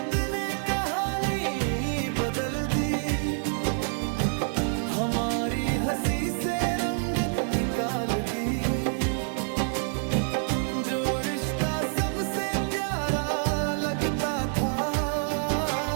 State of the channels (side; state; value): left; silent; digital silence